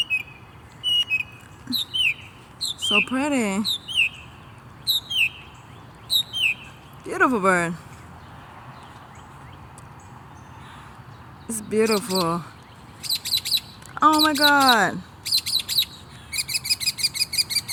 So pretty. Beautiful bird. It's beautiful. Oh my god.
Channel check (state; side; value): identical; both; correlation 1.00